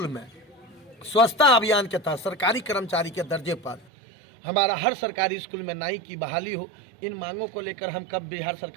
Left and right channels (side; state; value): left; drops out; at 3.9 s